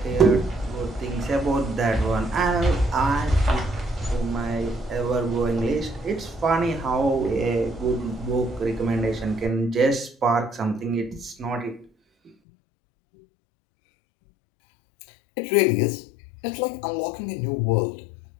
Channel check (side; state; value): right; drops out; at 12.3 s